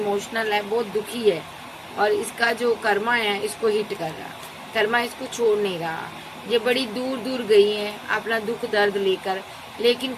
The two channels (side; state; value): both; identical; correlation 1.00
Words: है, बहुत दुखी है, और इसका जो कर्मा है इसको हिट कर रहा, कर्मा इसको छोड़ नहीं रहा। ये बड़ी दूर दूर गई है अपना दुख दर्द लेकर, लेकिन